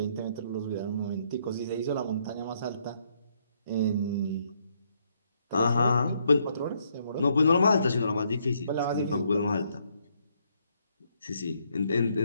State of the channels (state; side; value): inverted; both; correlation -0.72